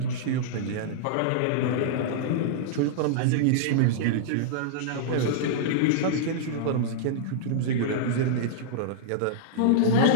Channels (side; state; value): both; different; correlation -0.02